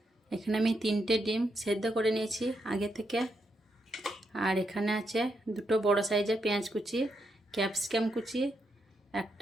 আমি 3টে ডিম সেদ্ধ করে নিয়েছি আগে থেকে। আর এখানে আছে 2টো বড় সাইজের পেঁয়াজ কুচি, ক্যাপসিকাম কুচি,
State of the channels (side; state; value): both; normal; correlation 0.81